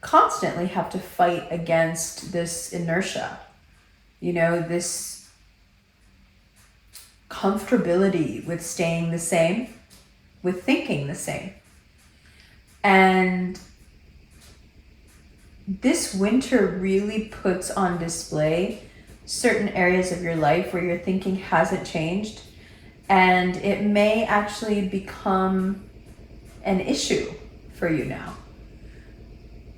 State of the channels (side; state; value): both; identical; correlation 1.00